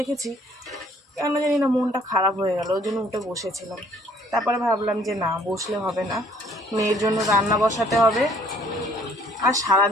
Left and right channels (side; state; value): both; normal; correlation 0.60